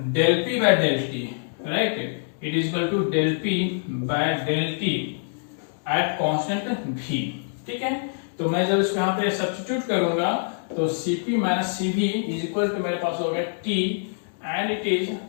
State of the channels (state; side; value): silent; right; digital silence